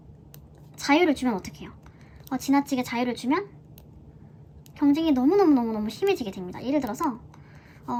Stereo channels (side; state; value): both; identical; correlation 1.00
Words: 자유를 주면 어떡해요? 지나치게 자유를 주면 경쟁이 너무너무 심해지게 됩니다. 예를 들어서